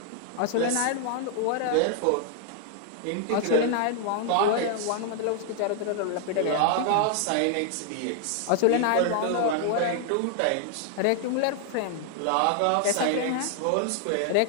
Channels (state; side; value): different; both; correlation 0.00